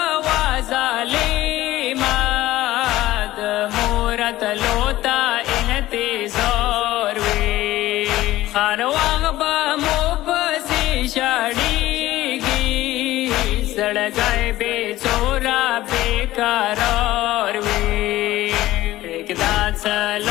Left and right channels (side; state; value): right; quieter; 16.0 dB